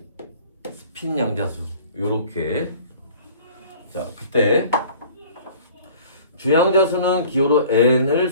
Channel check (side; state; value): both; inverted; correlation -0.48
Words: 스핀양자수. 요렇게. 자, 그때 주양자수는 기호로 n을